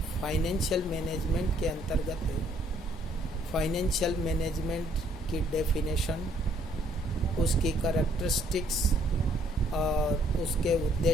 financial management के अंतर्गत फाइनेंशियल मैनेजमेंट की डेफिनेशन, उसकी करैक्टरिस्टिक्स और उसके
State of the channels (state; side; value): normal; both; correlation 0.65